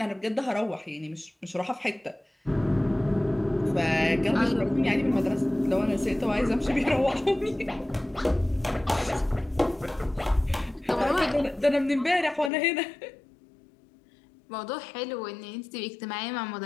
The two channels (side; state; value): right; drops out; at 12.5 s